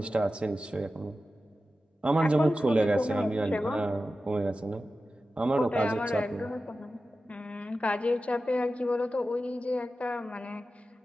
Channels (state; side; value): normal; both; correlation 0.93